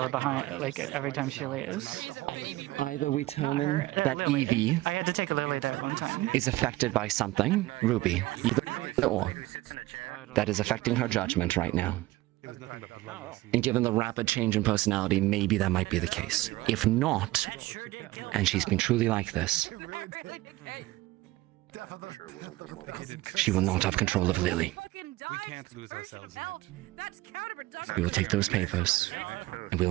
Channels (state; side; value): quieter; left; 18.4 dB